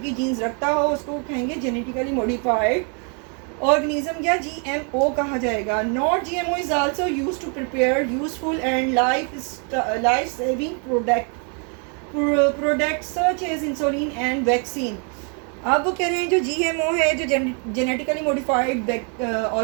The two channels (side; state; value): left; quieter; 39.1 dB